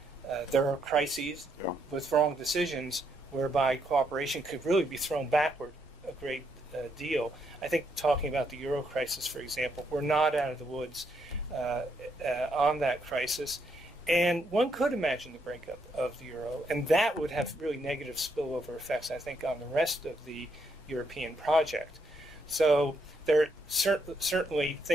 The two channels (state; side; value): normal; both; correlation 0.76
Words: there are crises with wrong decisions whereby cooperation could really be thrown backward a great deal. I think talking about the euro crisis, for example, we're not out of the woods on that crisis. And one could imagine the breakup of the euro, and that would have really negative spillover effects, I think, on the rest of the European project. So there certainly